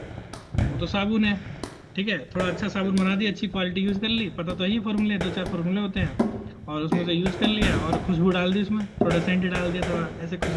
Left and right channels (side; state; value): both; identical; correlation 1.00